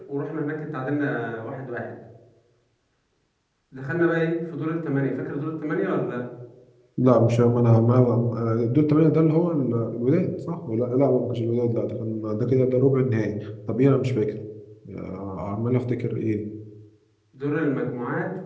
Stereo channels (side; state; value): both; identical; correlation 1.00